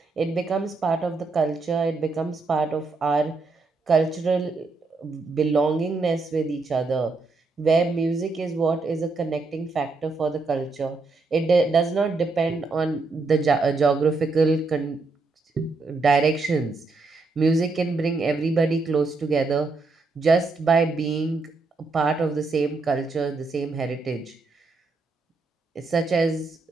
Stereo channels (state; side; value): quieter; left; 3.8 dB